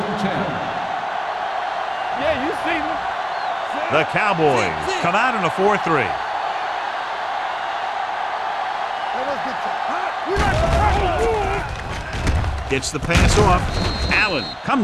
10. Yeah, you see me. The Cowboys come out in a 4-3. Gets the pass off. Allen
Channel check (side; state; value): both; identical; correlation 1.00